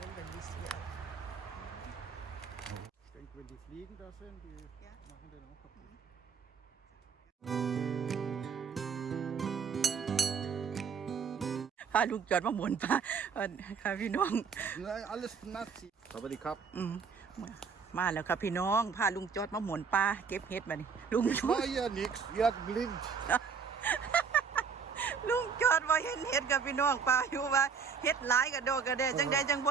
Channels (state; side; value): quieter; left; 6.0 dB